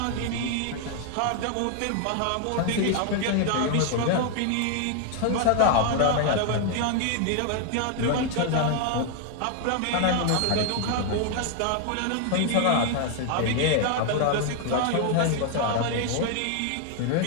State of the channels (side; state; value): both; different; correlation 0.00